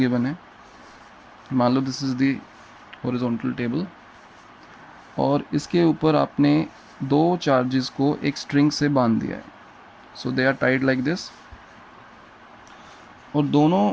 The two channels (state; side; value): identical; both; correlation 1.00